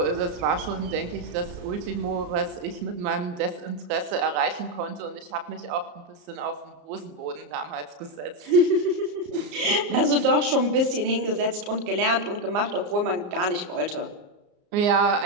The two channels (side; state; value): left; late; 34 ms